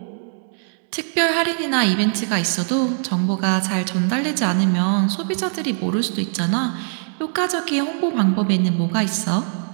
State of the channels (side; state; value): left; silent; digital silence